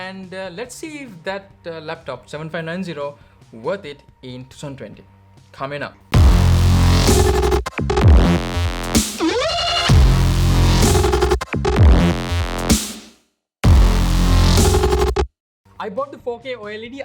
let's see if that laptop 7590 worth it in 2020. Coming up. I bought the 4K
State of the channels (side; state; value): both; identical; correlation 1.00